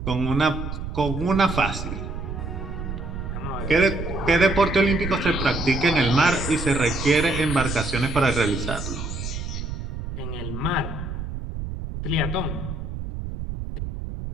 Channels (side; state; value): right; noise; rumble, 6 dB below the sound